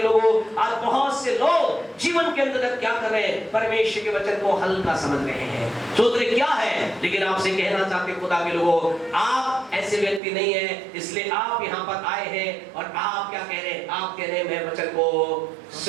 लोगों, आज बहुत से लोग जीवन के अंदर क्या कर रहे हैं, परमेश्वर के वचन को हल्का समझ रहे हैं, सोच रहे क्या है, लेकिन आपसे कहना चाहते खुदा के लोगों, आप ऐसे व्यक्ति नहीं है, इसलिए आप यहाँ पर आए हैं और आप क्या कह रहे हैं? आप कह रहे हैं मैं वचन को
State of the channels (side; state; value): left; drops out; at 10.2 s